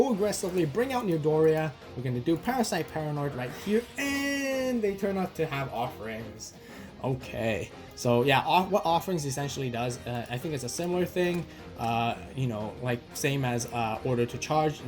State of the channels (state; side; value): identical; both; correlation 1.00